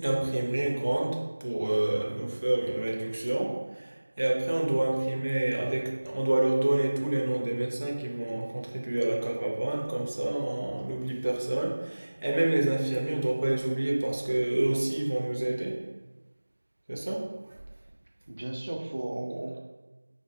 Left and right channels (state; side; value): inverted; both; correlation -1.00